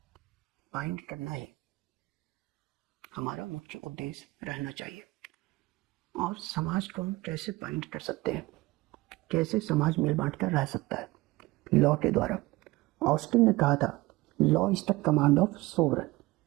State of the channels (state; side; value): quieter; left; 20.5 dB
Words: बाइंड करना ही हमारा मुख्य उद्देश्य रहना चाहिए। और समाज को हम कैसे बाइंड कर सकते हैं, कैसे समाज मिल बांट कर रह सकता है? लॉ के द्वारा। ऑस्टिन ने कहा था, law is the command of sovereign.